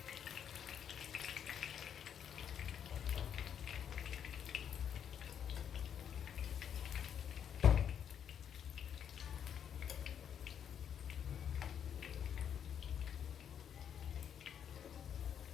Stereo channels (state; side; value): quieter; right; 8.6 dB